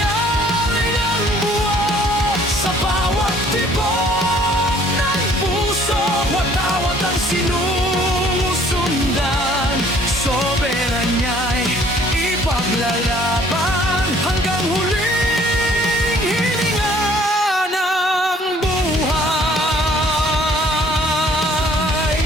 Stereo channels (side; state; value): both; normal; correlation 0.58